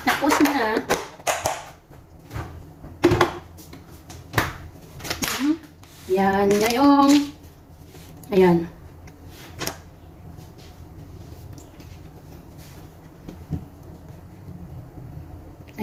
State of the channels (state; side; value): identical; both; correlation 1.00